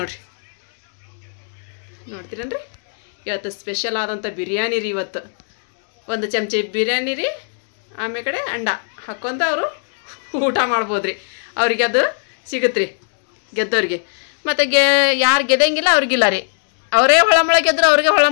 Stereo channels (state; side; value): silent; right; digital silence